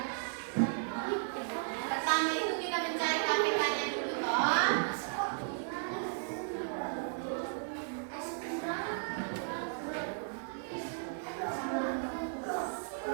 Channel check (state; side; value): silent; left; digital silence